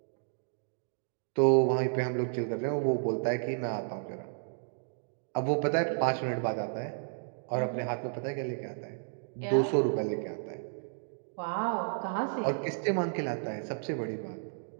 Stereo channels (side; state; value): left; silent; digital silence